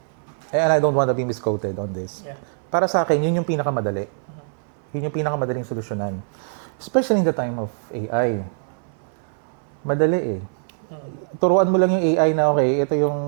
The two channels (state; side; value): silent; left; 62 dB below the other